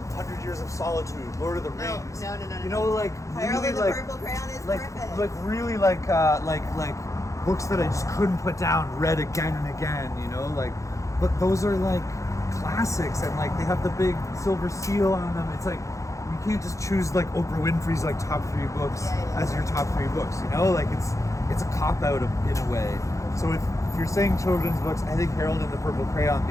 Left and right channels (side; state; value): right; late; 0.15 ms